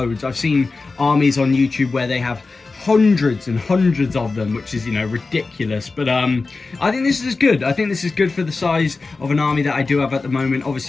I've seen armies on YouTube where they have hundreds and hundreds of them, which is, you know, ridiculous, but I think this is good. I think this is good for the size of an army that I do have at the moment.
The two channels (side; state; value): right; quieter; 3.9 dB